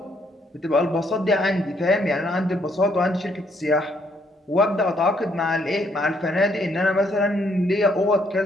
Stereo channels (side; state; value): both; normal; correlation 0.70